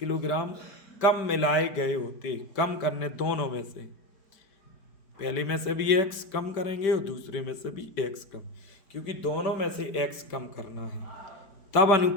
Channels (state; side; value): late; right; 5.1 ms